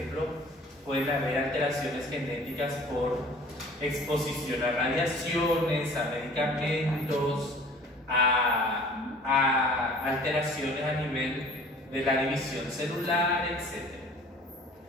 pueden haber alteraciones genéticas por exposición a radiaciones, a medicamentos, a alteraciones a nivel de la división celular, etc.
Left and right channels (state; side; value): normal; both; correlation 0.48